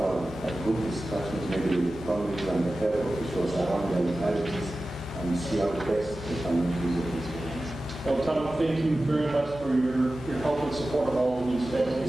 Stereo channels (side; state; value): both; normal; correlation 0.95